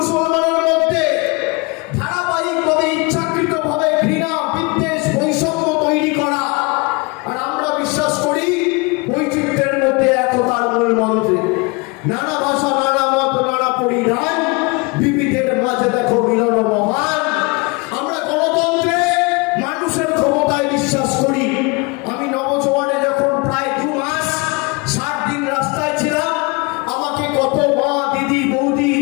মধ্যে ধারাবাহিকভাবে ইচ্ছাকৃতভাবে ঘৃণা, বিদ্বেষ, বৈষম্য তৈরি করা। আর আমরা বিশ্বাস করি বৈচিত্র্যের মধ্যে একতার মূল মন্ত্রে। নানা ভাষা, নানা মত, নানা পরিধান, বিবিধের মাঝে দেখো মিলন মহান। আমরা গণতন্ত্রে মানুষের ক্ষমতায় বিশ্বাস করি। আমি নবজোয়ানে যখন প্রায় 2 মাস 60 দিন রাস্তায় ছিলাম, আমাকে কত মা, দিদি, বৌদি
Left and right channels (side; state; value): right; quieter; 28.2 dB